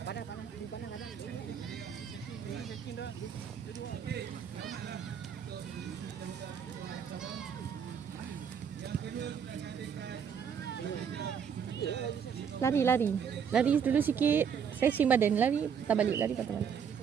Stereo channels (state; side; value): quieter; left; 7.4 dB